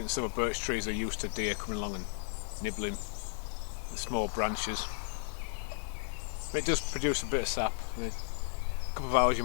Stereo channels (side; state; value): right; silent; 55 dB below the other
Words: the silver birch trees are used to deer coming along and nibbling the small branches. But it does produce a bit of sap. In a couple of hours you